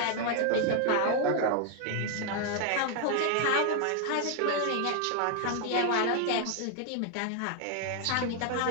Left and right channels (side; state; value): both; different; correlation 0.00